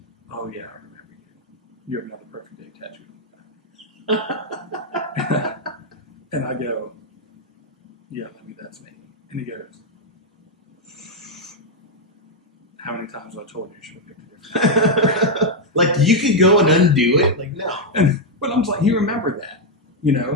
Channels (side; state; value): both; normal; correlation 0.00